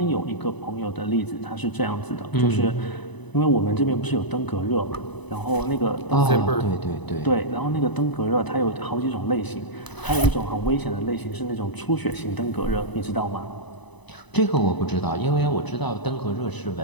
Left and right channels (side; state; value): right; late; 1.0 ms